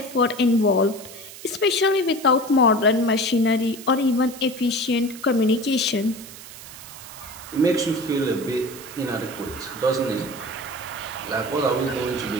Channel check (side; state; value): right; noise; hiss, 15 dB below the sound